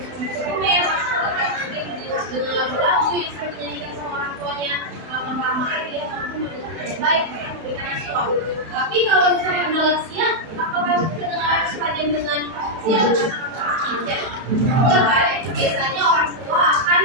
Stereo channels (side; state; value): left; late; 31 ms